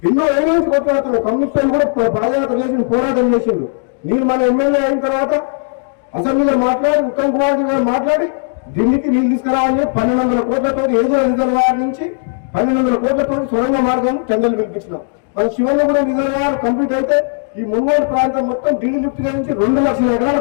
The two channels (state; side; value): silent; right; 64 dB below the other